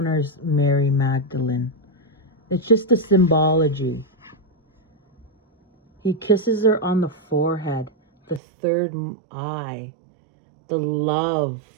Mary Magdalene. It's just the symbology. He kisses her on the forehead, the third eye, the love,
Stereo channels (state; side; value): drops out; left; at 8.4 s